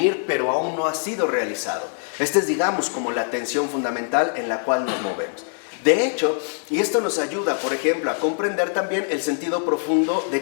pero aún no ha sido realizado. Esta es, digamos, como la tensión fundamental en la cual nos movemos. De hecho, y esto nos ayuda, por ejemplo, a comprender también el sentido profundo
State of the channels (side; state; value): right; silent; 63 dB below the other